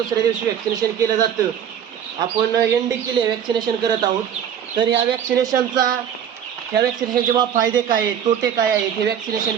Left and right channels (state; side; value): quieter; left; 9.0 dB